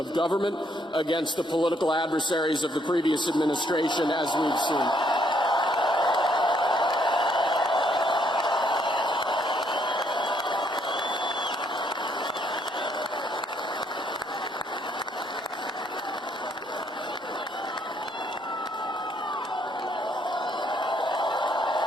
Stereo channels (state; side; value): normal; both; correlation 0.70